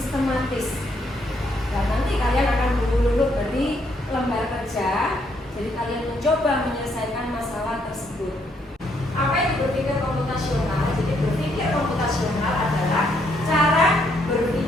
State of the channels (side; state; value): both; normal; correlation 0.72